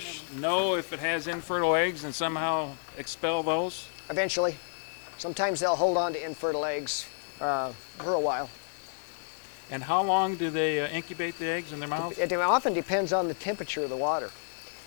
know if it has infertile eggs and somehow expel those? Eventually, sometimes they'll hold on to infertile eggs for a while. And how long do they incubate the eggs in their mouths? It often depends on the temperature of the water.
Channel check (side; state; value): right; silent; digital silence